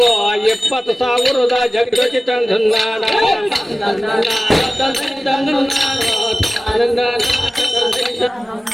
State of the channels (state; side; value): normal; both; correlation 0.97